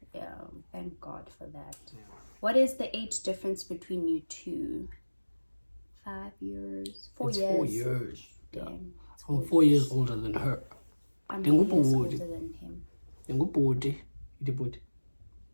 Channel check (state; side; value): inverted; both; correlation -1.00